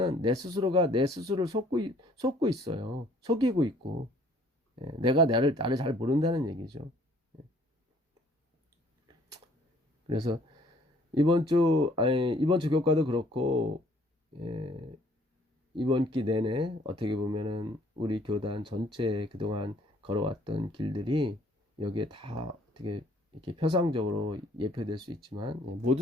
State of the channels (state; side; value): normal; both; correlation 0.60